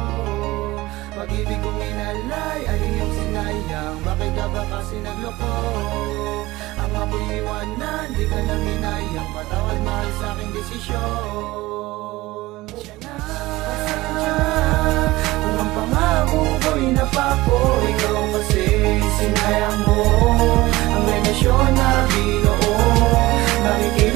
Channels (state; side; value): quieter; left; 19.0 dB